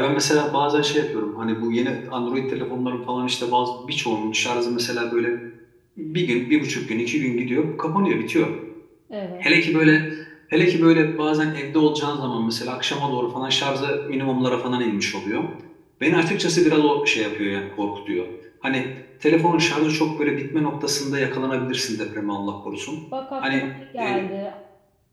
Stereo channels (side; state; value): both; identical; correlation 1.00